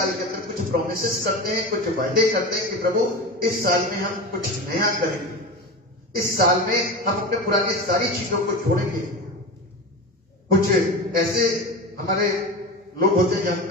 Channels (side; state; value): both; normal; correlation 0.26